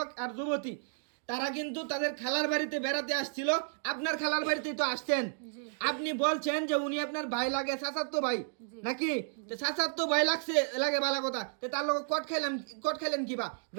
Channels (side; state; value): left; silent; digital silence